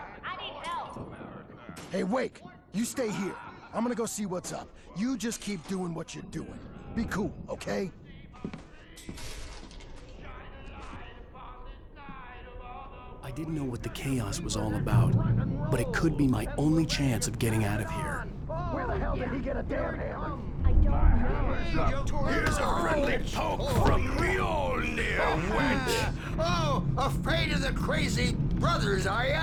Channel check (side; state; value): both; identical; correlation 1.00